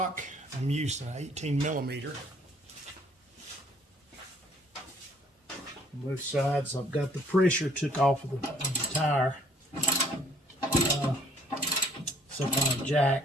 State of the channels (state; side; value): normal; both; correlation 0.60